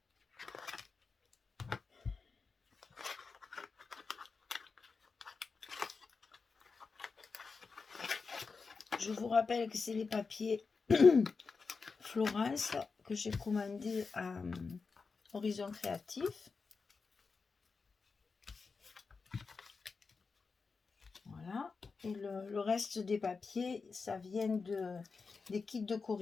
Je vous rappelle que c'est les papiers Florence que j'ai commandé à Horizon Créatif. Voilà. Et le reste des papiers, ça vient des kits de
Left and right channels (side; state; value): right; quieter; 4.7 dB